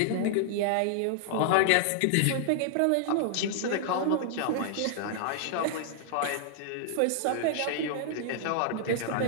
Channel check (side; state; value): both; different; correlation -0.01